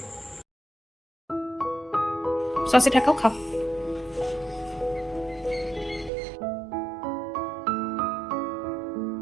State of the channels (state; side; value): drops out; left; at 6.1 s